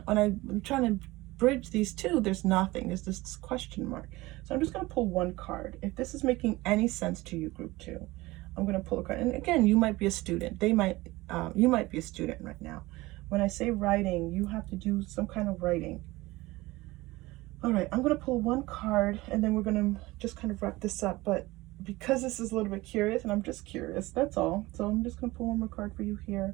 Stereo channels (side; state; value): left; quieter; 20.1 dB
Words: when I'm trying to bridge these two, there's nothing. There's this question mark. So I'm just going to pull one card. If this is making any sense to you, group 2, I'm going to pull a card. And again, you might be a student. You might be a student right now. When I say writing, you have to do some kind of writing. All right, I'm going to pull one card, and then we're going to just kind of wrap this up. But because this is a little bit curious, and I'm just curious, that's all. So I'm just going to pull one more card for you here.